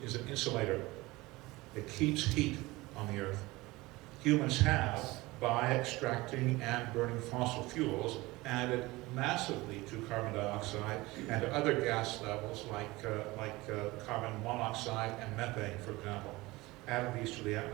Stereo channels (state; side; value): quieter; left; 20.9 dB